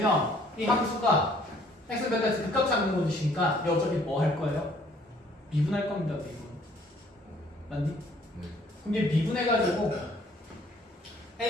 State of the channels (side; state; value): both; normal; correlation 0.60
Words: 이 함수가 x 베타에서 극값 찾는 곳이니까 얘 어차피 뭐 할 거예요? 미분할 겁니다, 미분. 맞니? 네. 그럼 얘 미분해가지고